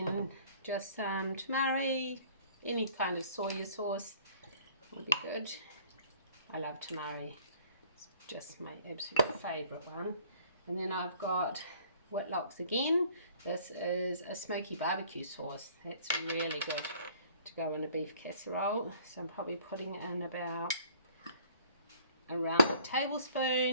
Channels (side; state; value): both; inverted; correlation -0.55